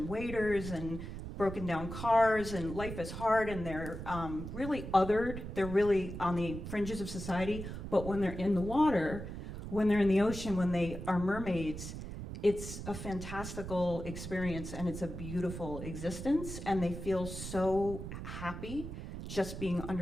waiters and broken down cars, and life is hard, and they're really othered. They're really on the fringes of society. But when they're in the water, when they're in the ocean, when they are mermaids, it's a fantastical experience, and it's a beautiful existence, and they feel so happy just being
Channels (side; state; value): right; noise; rumble, 8 dB below the sound